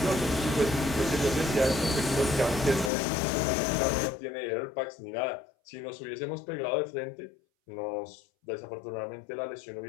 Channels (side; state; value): right; drops out; at 2.9 s